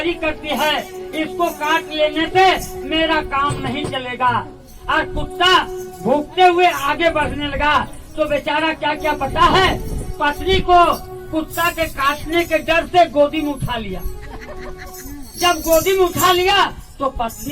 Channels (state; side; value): identical; both; correlation 1.00